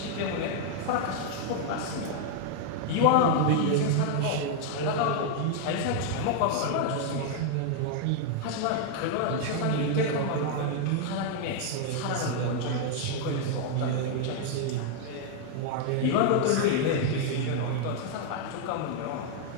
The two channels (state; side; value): different; both; correlation 0.00